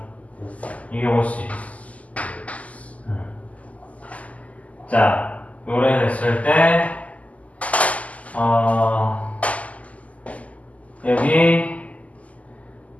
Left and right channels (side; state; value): right; late; 0.071 ms